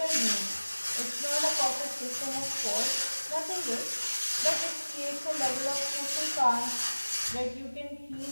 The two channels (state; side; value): inverted; both; correlation -1.00